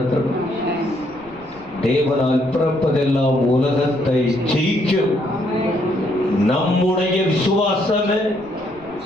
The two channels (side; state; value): right; noise; rumble, 25 dB below the sound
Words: தேவனால் பிறப்பதெல்லாம் உலகத்தை ஜெயிக்கும். நம்முடைய விசுவாசமே